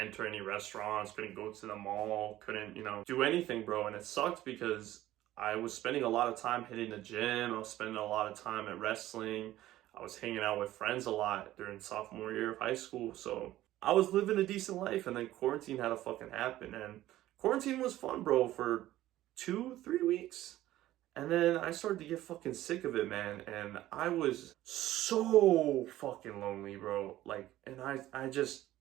any restaurants, couldn't go to the mall, couldn't, do anything, bro. And it sucked because I was spending a lot of time hitting the gym. I was spending a lot of time at wrestling. I was hanging out with friends a lot during sophomore year of high school. So I was living a decent life, and then quarantine had to fucking happen. And quarantine was fun, bro, for 2-3 weeks. And then I started to get fucking sick of it, man. And I was so fucking lonely, bro. Like, and I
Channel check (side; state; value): left; quieter; 14.8 dB